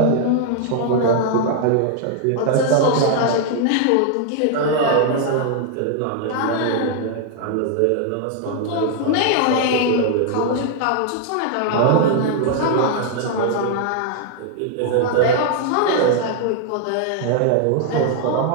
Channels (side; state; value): both; different; correlation 0.00